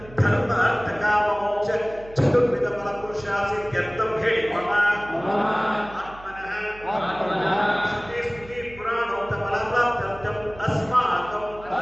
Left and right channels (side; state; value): right; noise; hum, 19 dB below the sound